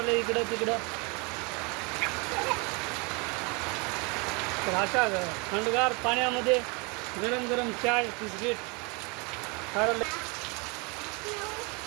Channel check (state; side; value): quieter; left; 30.6 dB